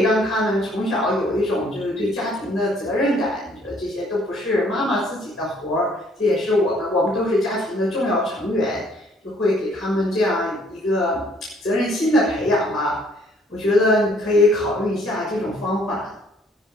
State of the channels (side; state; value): both; normal; correlation 0.62